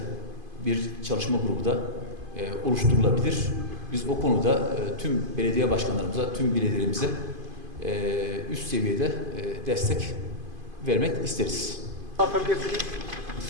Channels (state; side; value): late; left; 2.5 ms